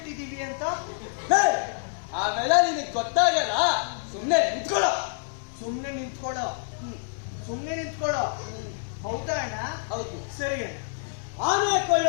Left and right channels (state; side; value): silent; right; digital silence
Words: ಅಂತ? ಆಮೇಲೆ ನಿನಗೆ ಗೊತ್ತಾಗಲ್ಲ. ಸುಮ್ನೆ ನಿಂತ್ಕೊಳ್ಳೋ. ಸುಮ್ನೆ ನಿಂತ್ಕೊಳ್ಳೋ. ಹೌದಾ ಅಣ್ಣ? ಹೌದು. ಸರಿ ಅಣ್ಣ. ಆನೆ